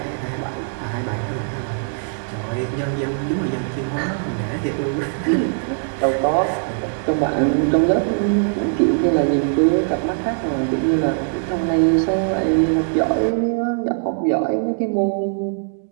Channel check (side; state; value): left; silent; digital silence